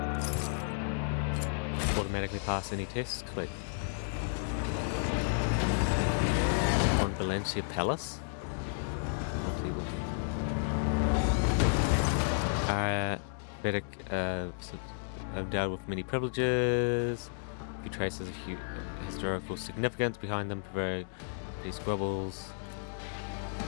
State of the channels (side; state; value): right; silent; digital silence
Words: Automatically pass any tests? Wait. On Valencia Palace? Better, endowed with many privileges. Few traces of historical significance behind them, very squabbles.